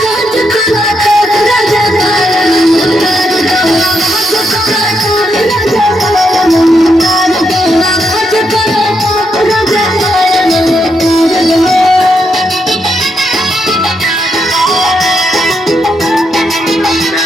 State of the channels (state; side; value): normal; both; correlation 0.80